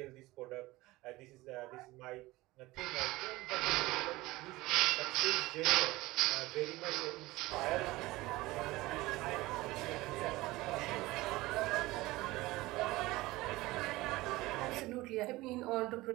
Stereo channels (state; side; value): quieter; left; 19.6 dB